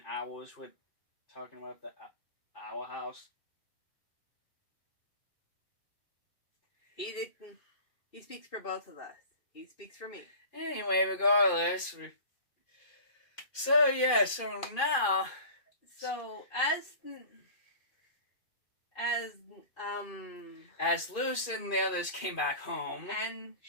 owls with talking about the owl house. He speaks for both of us. He speaks for me. Anyway, regardless. So now... So, as Luz and the others came back home, and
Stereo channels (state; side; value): late; right; 2.5 ms